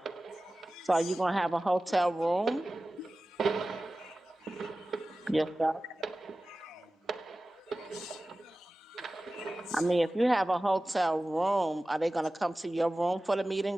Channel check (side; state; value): both; normal; correlation 0.96